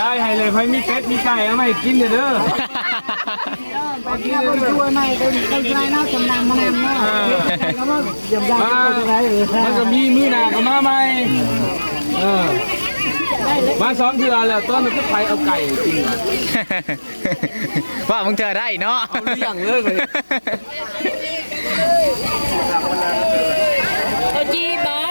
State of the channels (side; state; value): both; inverted; correlation -1.00